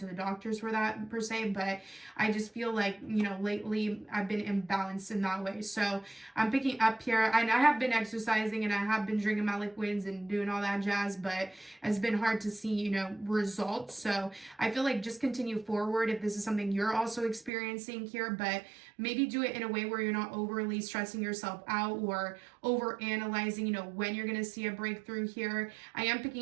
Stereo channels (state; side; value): drops out; left; at 17.5 s